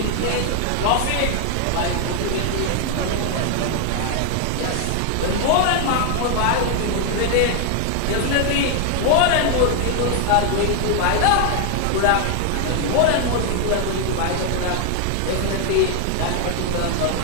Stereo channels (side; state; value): both; different; correlation 0.00